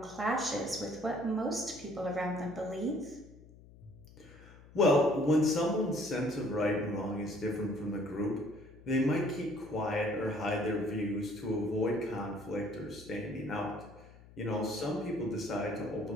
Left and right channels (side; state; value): left; noise; hum, 21 dB below the sound